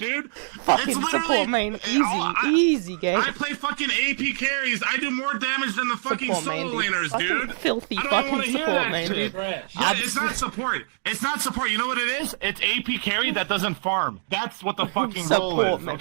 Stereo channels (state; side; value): silent; left; digital silence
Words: Fucking It's literally- support, man. Easy, I- easy game. I play fucking AP carries. I do more damage than the fucking Support, man, solo dude. laners, Fucking dude. filthy I don't even wanna fucking hear support, that man, shit. dude. Trash. Yeah, it's not support. It's not support. You know what it is? It's AP carry that doesn't farm. That's what the fucking role Support, is, man.